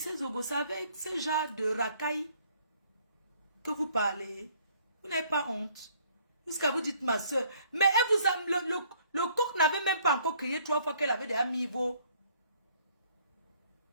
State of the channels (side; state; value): both; inverted; correlation -0.62